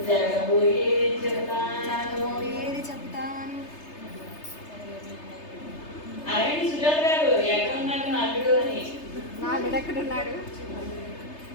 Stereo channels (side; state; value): right; late; 3.3 ms